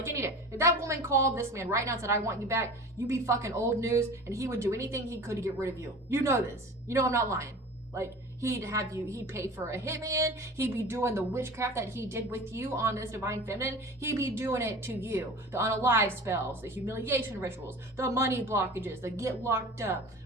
any day. If that woman called this man right now and said, I want you back, you'd be fucking old news, and he would do anything he could to get rid of you. You know this. You know I'm not lying. Like, he'd pay for a hitman, he'd be doing the witchcraft that he did with you on this Divine Feminine, he'd be doing it to you. The unalive spells, the humiliation rituals, the money blockages, the get locked up,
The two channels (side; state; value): both; normal; correlation 0.37